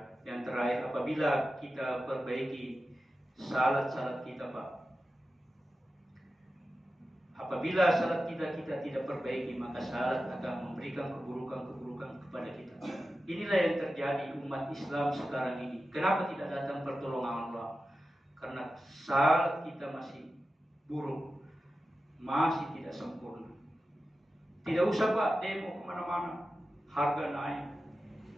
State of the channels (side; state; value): both; normal; correlation 0.92